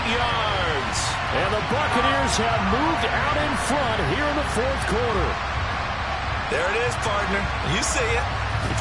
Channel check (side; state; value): both; identical; correlation 1.00